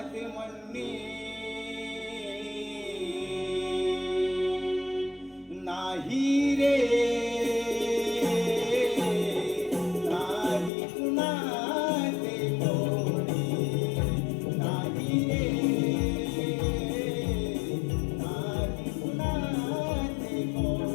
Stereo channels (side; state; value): right; drops out; at 10.7 s